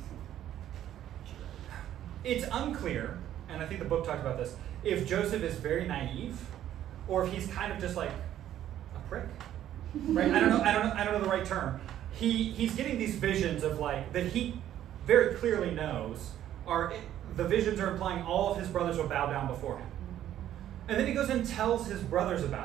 It's unclear, and I think the book talks about this, if Joseph is very naive or if he's kind of just like a prick, right? I don't know the right term. He's getting these visions of like that he very clearly knows the visions are implying all of his brothers will bow down before him. And then he goes and tells his brothers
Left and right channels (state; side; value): quieter; left; 11.7 dB